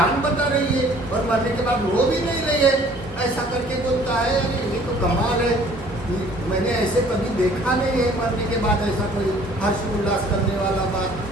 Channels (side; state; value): both; normal; correlation 0.54